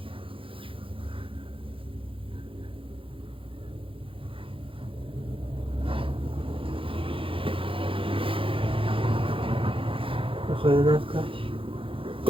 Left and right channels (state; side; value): late; left; 0.26 ms